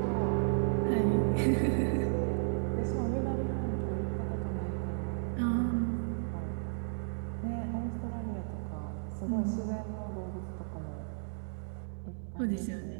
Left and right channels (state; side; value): silent; left; digital silence